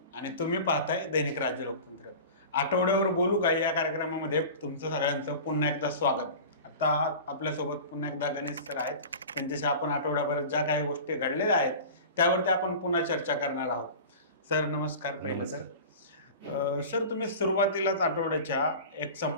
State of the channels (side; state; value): both; inverted; correlation -0.35